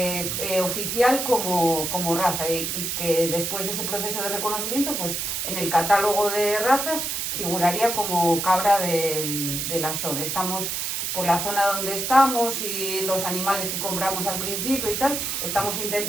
oficial como raza, y que después de ese proceso de reconocimiento, pues en el catálogo de razas figuraría como cabra del Asón. Estamos por la zona donde estamos y los animales que compramos al principio y tal, estamos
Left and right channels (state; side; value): noise; right; hiss, 2 dB below the sound